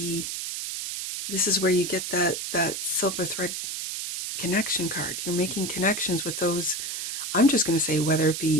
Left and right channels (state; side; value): noise; right; hiss, 4 dB below the sound